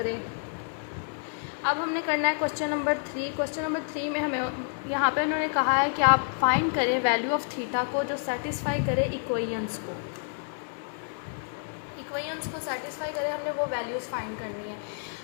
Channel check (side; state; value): right; silent; digital silence